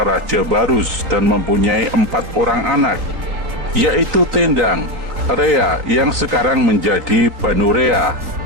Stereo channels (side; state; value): left; late; 3.8 ms